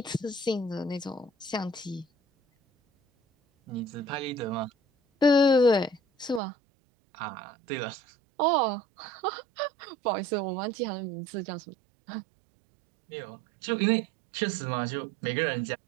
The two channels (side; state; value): left; drops out; at 6.4 s